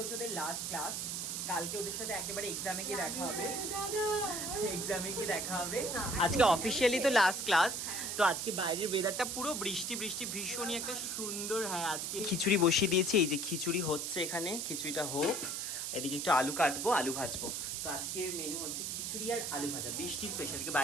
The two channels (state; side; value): noise; right; hiss, 3 dB below the sound